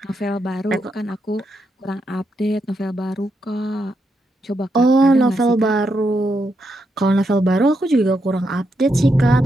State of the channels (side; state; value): both; normal; correlation 0.82